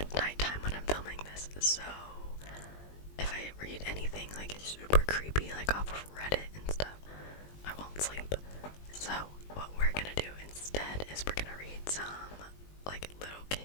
nighttime when I'm filming this, so if I read anything like super creepy, like off of Reddit and stuff, I won't sleep. So what we're gonna do instead is we're gonna read some like little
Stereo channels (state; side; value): late; right; 20 ms